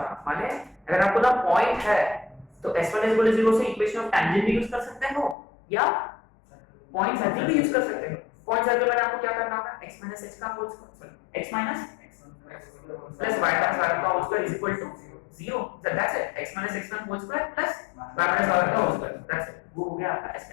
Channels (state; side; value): drops out; right; at 5.4 s